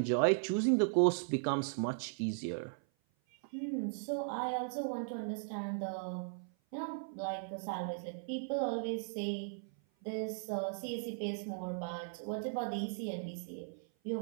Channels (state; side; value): silent; left; 53 dB below the other